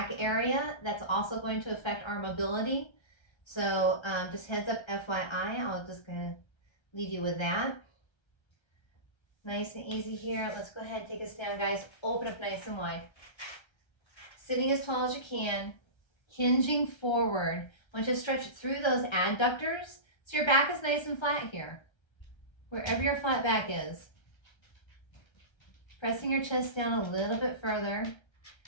area. That's also going to affect our mobility. So just heads up FYI, I'll just gonna leave you with that. Nice and easy here. Let's go ahead and take us down, guys. Open up nice and wide. Sitting as tall as you can, hinging forward. I want you to stretch through those adductors so your back is nice and flat here. Wherever your flat back is. Pressing your chest down a little bit further.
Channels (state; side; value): late; right; 1.3 ms